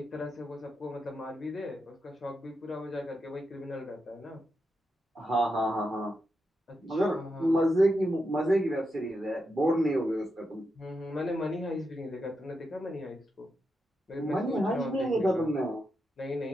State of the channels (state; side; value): normal; both; correlation 0.86